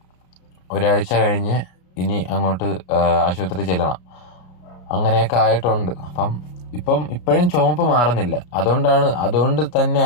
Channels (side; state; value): right; late; 33 ms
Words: ഒരാഴ്ച കഴിഞ്ഞ് ഇനി അങ്ങോട്ട് ആശുപത്രി ചെല്ലണം. അങ്ങനെയൊക്കെ ആയിട്ടുണ്ട്. അപ്പം ഇപ്പോഴും ചുമപ്പ് മാറുന്നില്ല. അതുകൊണ്ട് തന്നെ